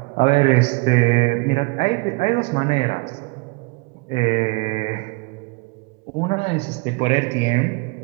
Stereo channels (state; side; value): quieter; left; 28.1 dB